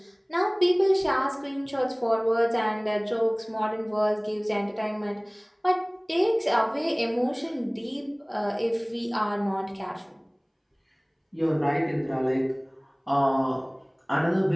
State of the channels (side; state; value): both; identical; correlation 1.00